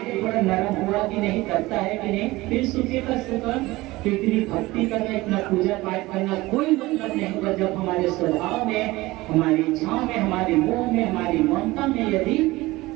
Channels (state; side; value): quieter; left; 19.8 dB